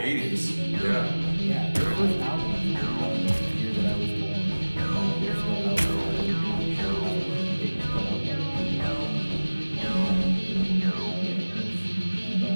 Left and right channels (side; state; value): both; inverted; correlation -1.00